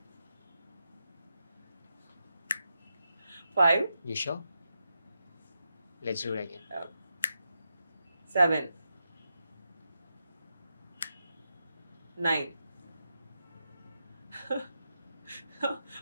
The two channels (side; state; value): both; inverted; correlation -0.87